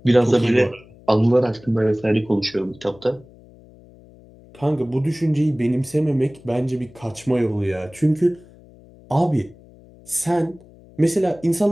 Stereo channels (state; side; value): noise; left; hum, 24 dB below the sound